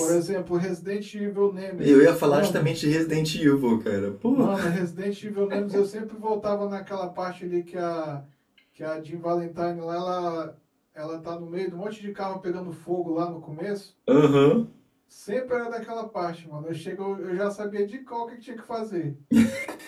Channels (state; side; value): identical; both; correlation 1.00